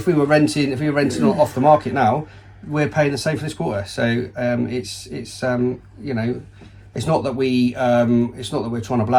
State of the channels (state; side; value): identical; both; correlation 1.00